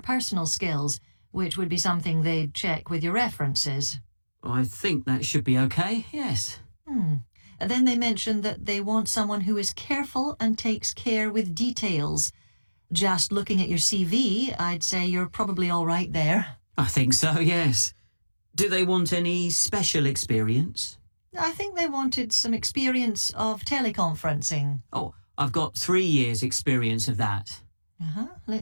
skills, which would be something they'd check with your references. I think that should be okay, yes. Then they mention that they want someone who is careful and takes care with details. Just looking at your CV, I'd say you're probably all right there. I think so, yes. Do they want any special experience? I think they wanted some experience of teleconferencing. Oh, I've got 3 years' experience of that.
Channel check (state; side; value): inverted; both; correlation -1.00